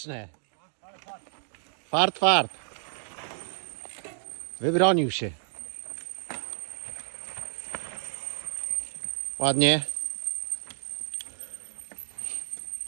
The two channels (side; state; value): left; silent; digital silence